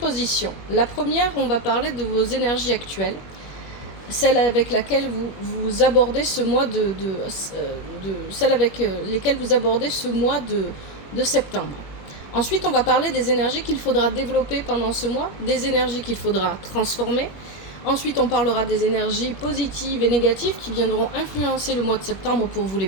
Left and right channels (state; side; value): late; right; 21 ms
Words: La première, on va parler de vos énergies actuelles, celle avec laquelle vous abordez ce mois celle avec lesquelles vous abordez ce mois de septembre. Ensuite, on va parler des énergies qu'il faudra développer pendant ce mois, des énergies qu'il faudra transformer. Ensuite, on parlera des énergies positives et négatives qui viendront influencer le mois de septembre pour vous les